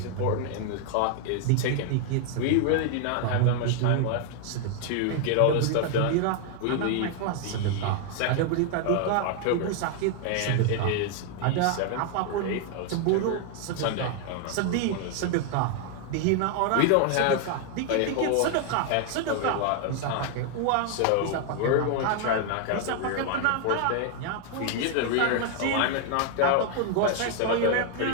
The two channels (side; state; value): both; different; correlation 0.00